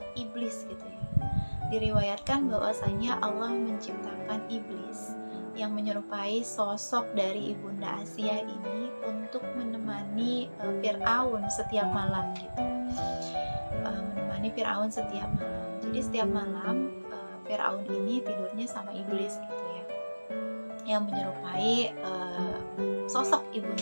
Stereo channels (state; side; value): inverted; both; correlation -1.00